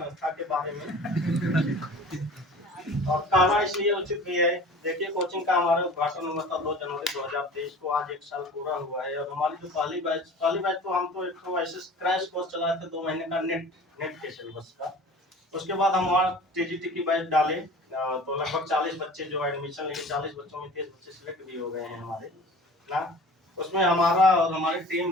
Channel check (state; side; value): normal; both; correlation 0.42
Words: के बारे में। और कहना इसलिए उचित भी है, देखिए कोचिंग का हमारा उद्घाटन हुआ था 2 जनवरी 2023 को, आज 1 साल पूरा हुआ है। और हमारी जो पहली बैच तो हम तो एक तो ऐसे क्रैश कोर्स चलाए थे 2 महीने का नेट के सिलेबस का। उसके बाद हम वहाँ टीजीटी की बैच डाले, तो लगभग 40 बच्चे जो एडमिशन लिए, 40 बच्चों में 30 बच्चे सिलेक्ट भी हो गए हैं हमारे ना। उसमें हमारा और हमारी टीम